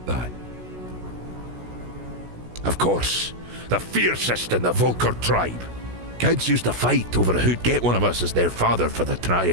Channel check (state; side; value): late; left; 16 ms